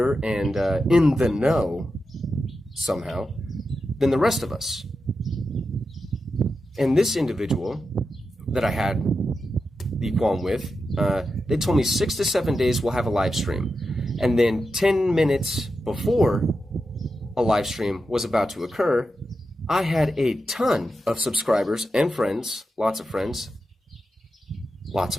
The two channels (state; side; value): normal; both; correlation 0.89